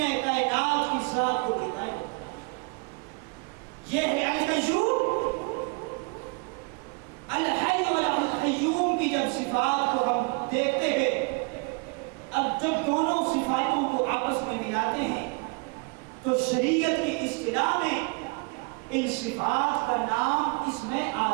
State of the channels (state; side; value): quieter; left; 33.2 dB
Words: دیکھتے گئے. اب جب دونوں صفاتوں کو آپس میں ملاتے ہیں تو شریعت کی اصطلاح میں ان صفات کا نام اسم